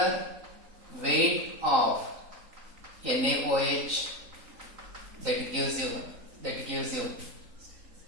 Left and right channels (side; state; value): left; late; 3.8 ms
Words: weight of NaOH, that gives you